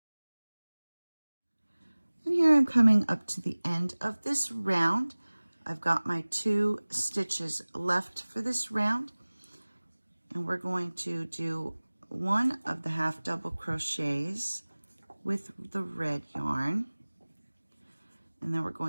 And here I'm coming up to the end of this round. I've got my 2 stitches left for this round, and we're going to do one of the half double crochets with the red yarn, and then we're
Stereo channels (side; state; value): both; inverted; correlation -1.00